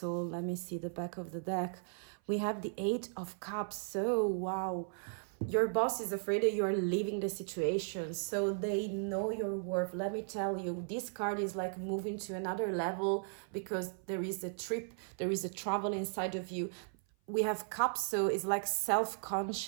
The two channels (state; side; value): silent; left; 53 dB below the other